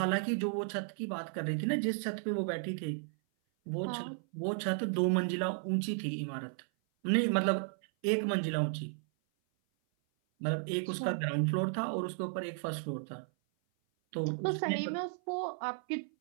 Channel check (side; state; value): left; silent; 55 dB below the other